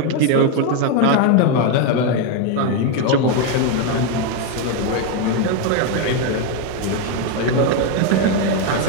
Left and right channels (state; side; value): different; both; correlation 0.02